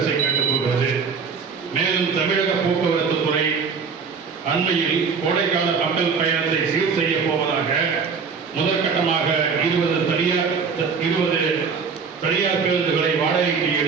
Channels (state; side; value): quieter; left; 5.6 dB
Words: கேட்டுக்கொள்கிறது. மேலும் தமிழக போக்குவரத்து துறை அண்மையில் கோடைக்கால மக்கள் பயணத்தை சீர் செய்ய போவதாக முதற்கட்டமாக 20 தனியார் பேருந்துகளை வாடகைக்கு